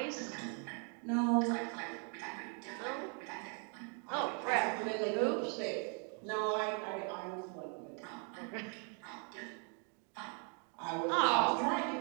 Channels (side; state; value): left; quieter; 39.9 dB